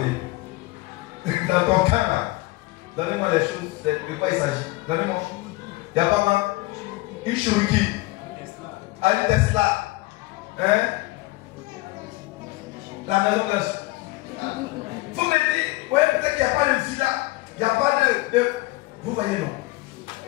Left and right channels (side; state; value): right; quieter; 21.0 dB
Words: Dans ton cas là, donnez-moi les choses, de quoi il s'agit. Donnez-moi. Il n'y a pas une Cherokee, un Tesla, hein? La maison de. Vous me dites, ouais, peut-être qu'il n'y a pas de villa, il n'y a pas de. Vous voyez, non?